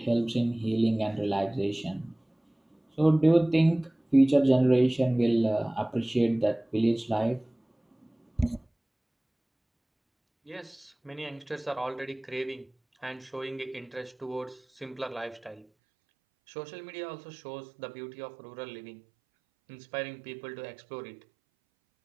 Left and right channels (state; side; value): drops out; left; at 15.7 s